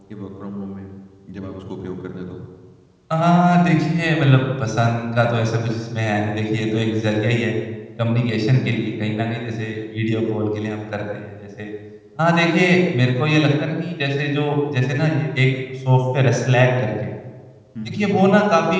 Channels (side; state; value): both; identical; correlation 1.00